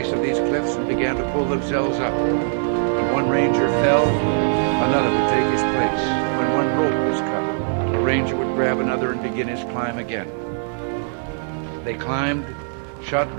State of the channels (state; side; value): silent; left; digital silence